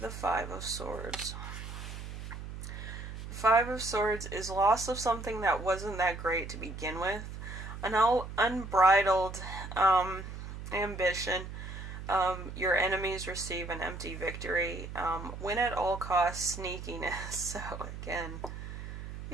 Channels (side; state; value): right; noise; hum, 9 dB below the sound